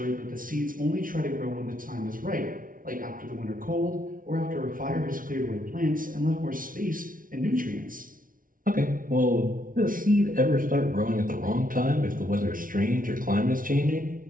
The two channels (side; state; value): left; late; 0.39 ms